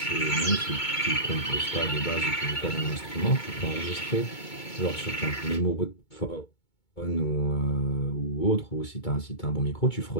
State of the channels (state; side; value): late; right; 2.2 ms